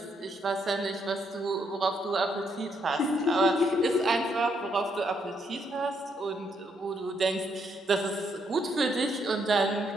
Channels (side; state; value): both; normal; correlation 0.74